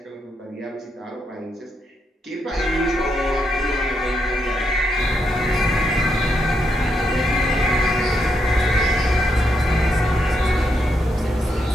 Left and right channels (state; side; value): normal; both; correlation 0.80